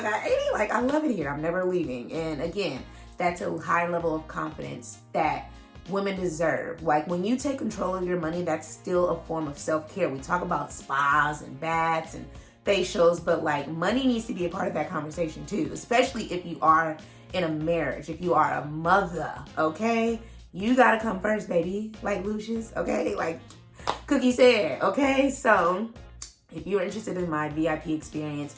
got 80. I love it here. I'm never leaving. And again, that's a high level of confidence that women deserve. When you take control of your money, that's still a form of self-care. We talk about spas and baths and facials, but money needs to be a part of that conversation too, especially if you are in a marriage, if you are a mother, okay? You gotta come first, baby, Lucius, okay? Cookie said, okay? So if you're interested in my VIP experience,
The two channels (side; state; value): both; identical; correlation 1.00